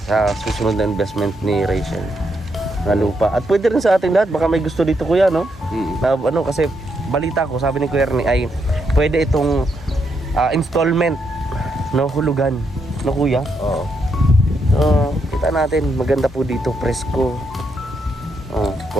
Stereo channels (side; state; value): both; normal; correlation 0.79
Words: sa susunod na investment ni Rachel na lupa. At pwede rin sa ating lahat, baka may gusto dito kuya, no? Na, ano, kasi balita ko, sabi ni Kuya Ernie ay pwede itong installment, no, hulugan, no kuya? Oo. So, kita natin, maganda po dito, presko.